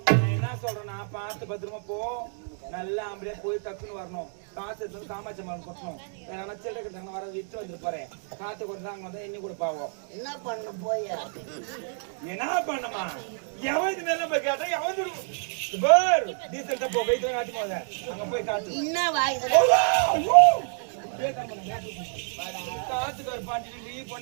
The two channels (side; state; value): left; silent; 59 dB below the other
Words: பத்திரமா போ நல்லா ஆம்பளையா போய் டக்குன்னு வரணும். காசு எடுத்து காமாட்சி மரம் கொட்டணும். வேற சில்லறை கட்டாங்க வர விட்டு வந்துட்டு போறேன். காத்து கொடுத்தாங்க வந்தா இன்னும் கூட பாவோம். என்ன பண்ண போய் என்ன பண்ணமா எவன் இது மேல போய் கேட்டா எவன் பார் டீசல்ட்ட போ வெயிட் காட்டி போத அங்க போய் காட்டு என்ன வாய்ஸ் காத்துக்கார் பாட்டி நீ